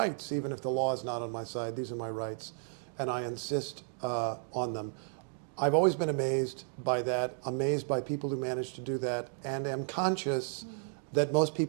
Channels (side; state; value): left; silent; 56 dB below the other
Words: even if the law is not on my side, these are my rights and I insist on them. I've always been amazed by that, amazed by people who manage to do that, and am conscious that most